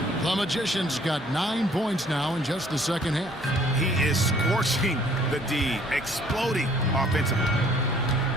The Magician's got 9 points now in just the second half. He is scorching the D, exploding offensively.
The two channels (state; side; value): normal; both; correlation 0.58